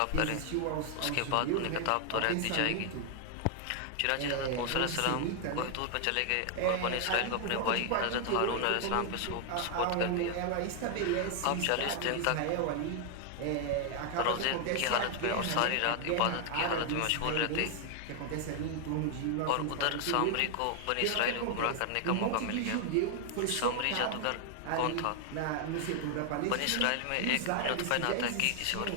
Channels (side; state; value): both; different; correlation 0.00